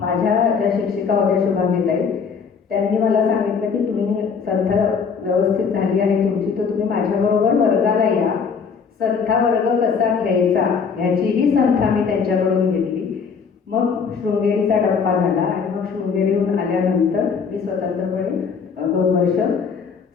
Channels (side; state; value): right; quieter; 5.9 dB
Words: माझ्या ज्या शिक्षिका होत्या शुभांगीताई, त्यांनी मला सांगितलं की तुम्ही संथा व्यवस्थित झाली आहे तुमची, तर तुम्ही माझ्याबरोबर वर्गाला या. संथा वर्ग कसा घ्यायचा ह्याचीही संथा मी त्यांच्याकडून घेतली. मग शृंगेरीचा टप्पा झाला आणि मग शृंगेरीहून आल्यानंतर मी स्वतंत्रपणे 2 वर्ष